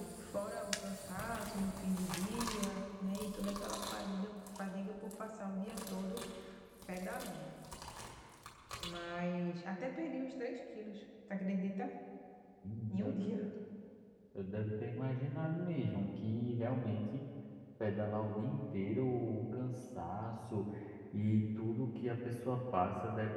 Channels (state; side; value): identical; both; correlation 1.00